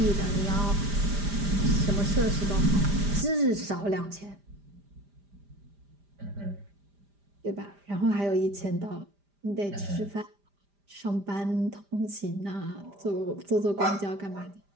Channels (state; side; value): late; left; 5.0 ms